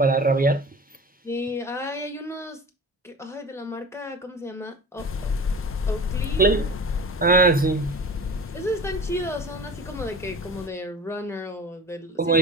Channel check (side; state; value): both; normal; correlation 0.36